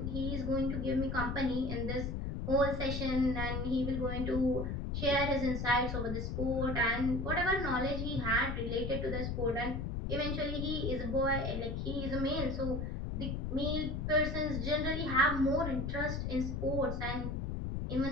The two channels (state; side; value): noise; left; rumble, 2 dB below the sound